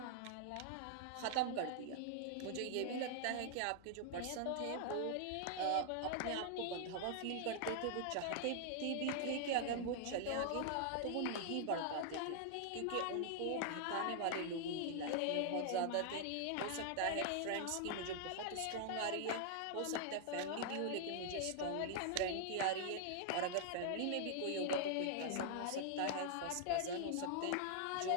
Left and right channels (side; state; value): both; different; correlation -0.01